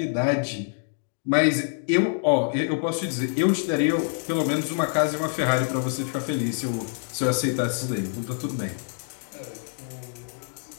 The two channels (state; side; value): silent; right; 61 dB below the other